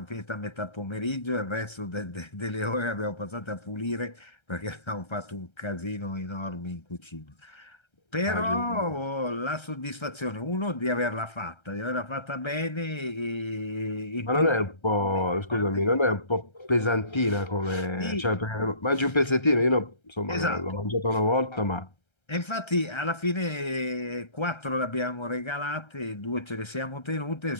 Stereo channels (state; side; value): late; right; 1.3 ms